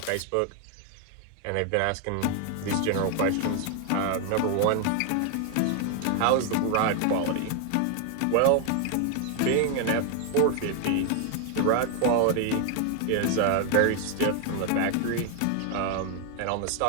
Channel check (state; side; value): different; both; correlation 0.00